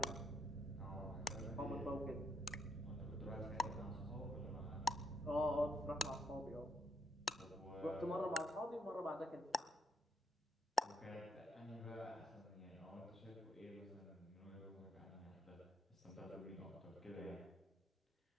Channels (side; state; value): both; normal; correlation 0.75